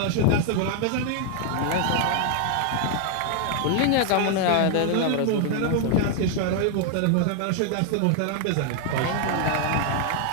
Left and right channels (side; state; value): both; different; correlation 0.00